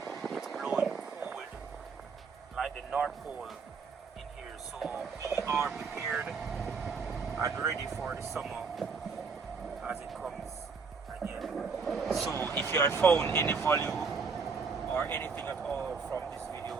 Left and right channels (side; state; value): left; quieter; 5.1 dB